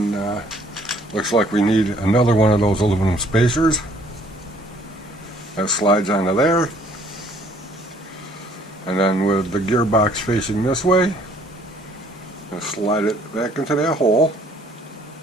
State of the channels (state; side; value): normal; both; correlation 0.60